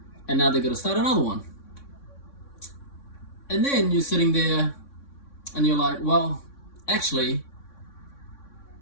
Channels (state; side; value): late; right; 3.6 ms